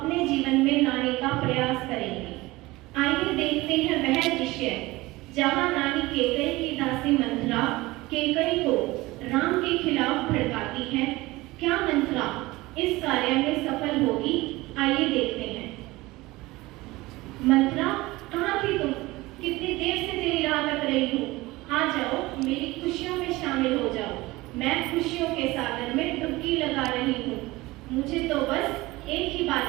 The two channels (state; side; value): quieter; left; 20.2 dB